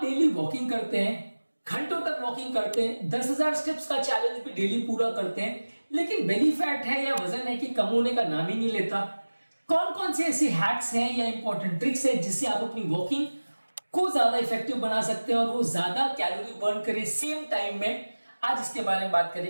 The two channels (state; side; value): inverted; both; correlation -1.00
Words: वॉकिंग करते हैं, घंटों तक वॉकिंग करते हैं, 10,000 स्टेप्स का चैलेंज भी डेली पूरा करते हैं, लेकिन बेली फैट है या वजन है कि कम होने का नाम ही नहीं लेता। कौन कौन से ऐसे हैक्स हैं या इंपॉर्टेंट ट्रिक्स हैं जिससे आप अपनी वॉकिंग को ज्यादा इफेक्टिव बना सकते हैं और वो ज्यादा कैलोरी बर्न करे सेम टाइम में, आज इसके बारे में बात